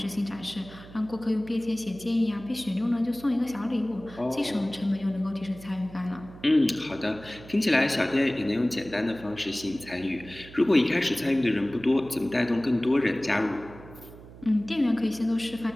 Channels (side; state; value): right; noise; hum, 18 dB below the sound